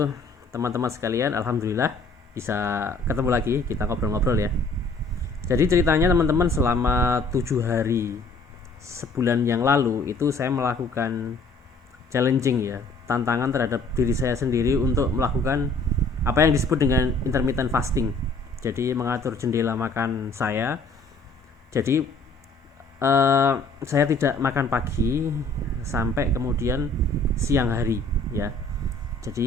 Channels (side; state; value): right; quieter; 3.2 dB